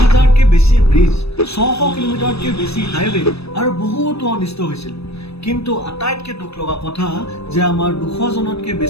বেছি ব্ৰিজ, 600 কিলোমিটাৰতকৈ বেছি হাইৱে আৰু বহুতো অনিষ্ট হৈছিল। কিন্তু আটাইতকৈ দুখ লগা কথা যে আমাৰ 200 জনতকৈ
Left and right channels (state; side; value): late; right; 0.78 ms